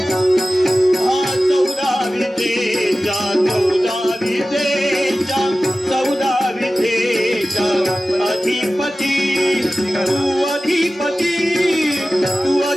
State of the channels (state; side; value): normal; both; correlation 0.96